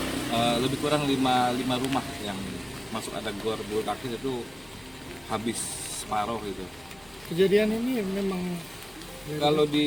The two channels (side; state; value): left; noise; hum, 27 dB below the sound